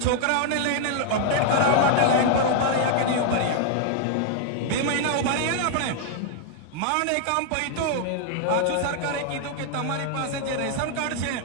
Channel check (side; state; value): both; different; correlation 0.00